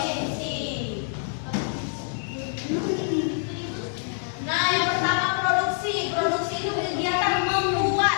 Nah, yang pertama produksi. Produksi itu kegiatan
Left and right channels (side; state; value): right; silent; 57 dB below the other